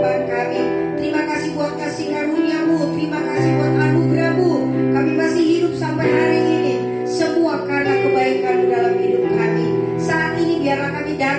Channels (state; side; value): identical; both; correlation 1.00